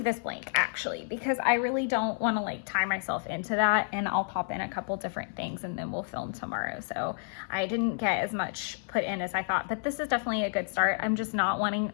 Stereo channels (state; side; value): silent; right; 58 dB below the other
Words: this blank actually because I really don't want to like tie myself into that, and I'll pop in a couple different things and then we'll film tomorrow. So I didn't get as much put in as I thought, but this is definitely a good start. I'm just not wanting,